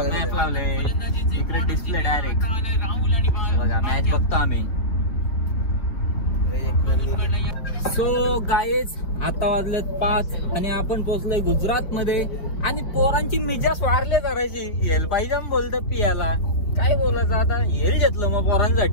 लावले. इकडे डिस्प्ले डायरेक्ट बघा. मॅच बघतो आम्ही. सो गाईज आता वाजलेत 5 आणि आपण पोहोचलोय गुजरात मध्ये. आणि पोरांची मिजाज वाढले करायची. हेल पाहिजे बोलत पियाला. काय बोलायचं आता. हेल घेतलं मग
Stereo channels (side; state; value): right; late; 5.1 ms